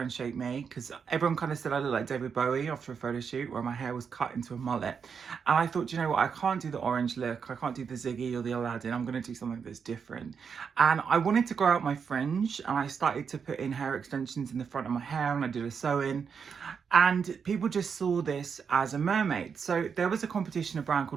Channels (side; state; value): left; quieter; 6.4 dB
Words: me because everyone kind of said I looked like David Bowie after a photo shoot where my hair was cut into a mullet. And I thought, you know what, I can't do the orange look. I can't do the Ziggy or the Aladdin. I'm going to do something that's different. And I wanted to grow out my fringe and I started to put in hair extensions in the front of my hair and I did a sew-in. And people just saw this as a mermaid. So there was a competition a brand